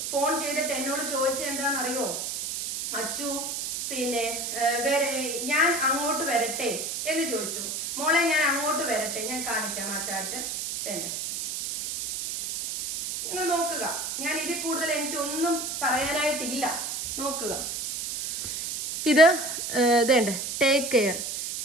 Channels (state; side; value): noise; right; hiss, 4 dB below the sound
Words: ഫോൺ ചെയ്തിട്ട് എന്നോട് ചോദിച്ചത് എന്താണെന്നറിയോ? അച്ചു പിന്നെ ഞാൻ അങ്ങോട്ട് വരട്ടെ എന്ന് ചോദിച്ചു. മോളെ ഞാൻ അങ്ങോട്ട് വരട്ടെ, ഞാൻ കാണിക്കാം ആ ചാറ്റ്. നിങ്ങൾ നോക്കുക. ഞാൻ ഇതിൽ കൂടുതൽ എനിക്കൊന്നും പറയാനായിട്ടില്ല. നോക്കുക. ഇത് ഇതേണ്ട ടേക്ക് കെയർ.